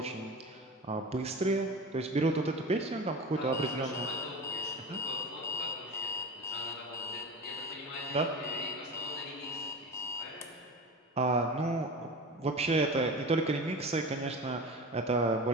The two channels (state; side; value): normal; both; correlation 0.30